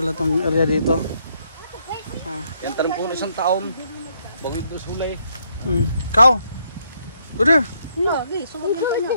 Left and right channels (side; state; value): both; inverted; correlation -0.72